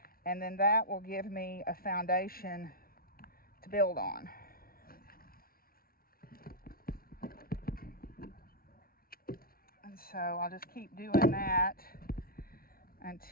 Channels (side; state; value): right; late; 0.43 ms